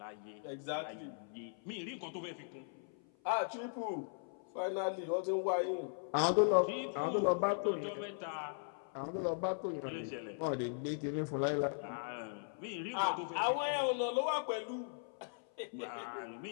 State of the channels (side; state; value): right; silent; 52 dB below the other